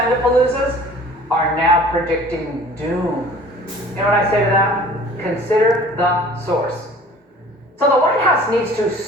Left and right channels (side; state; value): both; normal; correlation 0.48